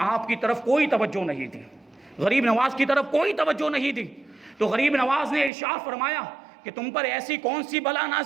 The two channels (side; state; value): left; drops out; at 5.5 s